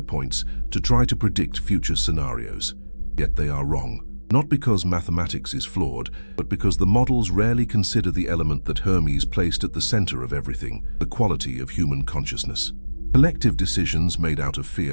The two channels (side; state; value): both; inverted; correlation -1.00